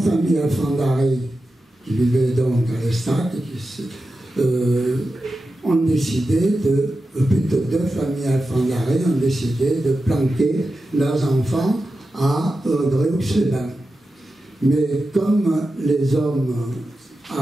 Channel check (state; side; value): normal; both; correlation 0.91